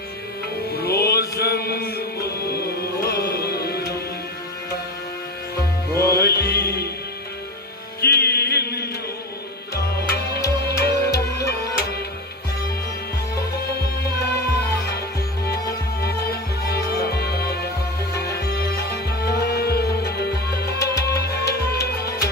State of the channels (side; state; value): both; normal; correlation 0.26